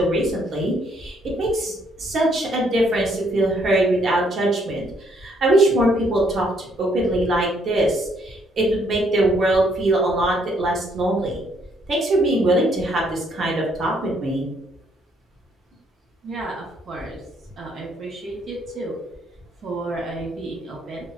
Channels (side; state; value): both; normal; correlation 0.69